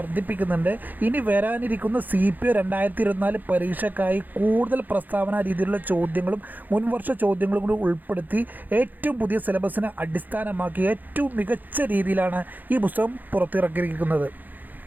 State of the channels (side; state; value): left; late; 0.085 ms